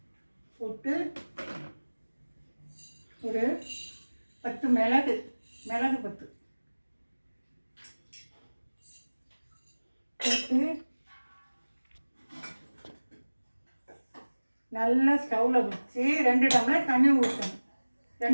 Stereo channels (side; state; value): both; inverted; correlation -1.00